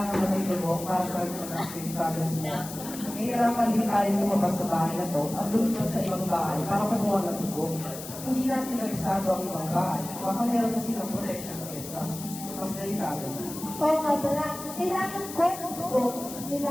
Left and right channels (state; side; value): noise; left; hiss, 11 dB below the sound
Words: mo ng dugo para sa mga pinipasas mo. Nahihirapan din tayo lumabas sa bahay na to at lumipat sa ibang bahay para kumuha ng dugo. Hindi natin nagsado ang ibang bahay. Baka meron na silang protection against us. Mas delikado. Oo nga pala, kailangan ko ng dugo